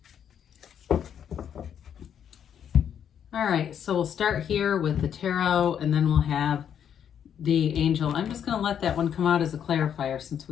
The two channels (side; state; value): right; quieter; 8.8 dB